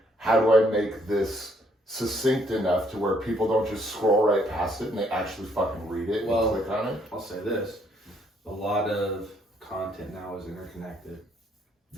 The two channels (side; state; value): both; normal; correlation 0.68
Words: how do I make this succinct enough to where people don't just scroll right past it and they actually fucking read it and click on it? I'll say this. A lot of content now is interconnected.